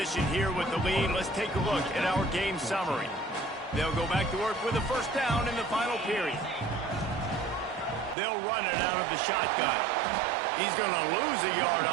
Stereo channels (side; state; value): left; drops out; at 8.2 s